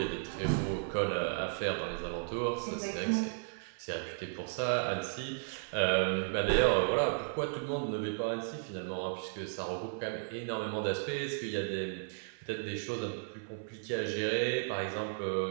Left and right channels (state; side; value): silent; left; 55 dB below the other